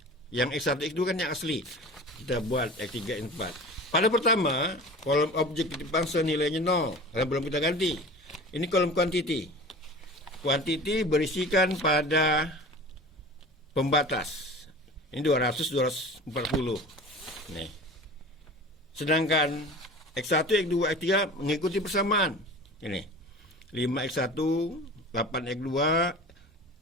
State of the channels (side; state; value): both; normal; correlation 0.38